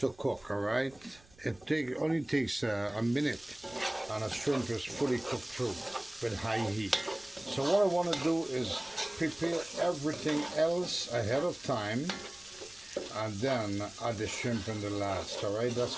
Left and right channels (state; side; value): noise; right; rumble, 26 dB below the sound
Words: cook. All right. It only takes a minute, and a shrimp is fully cooked through with high heat. So what I want to do is prepare everything else ahead of time, and then add the shrimp in the last. All right. That's